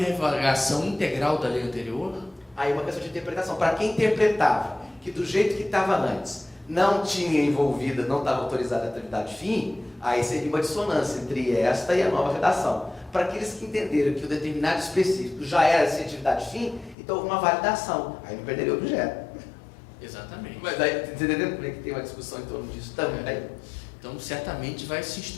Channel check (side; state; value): right; drops out; at 16.9 s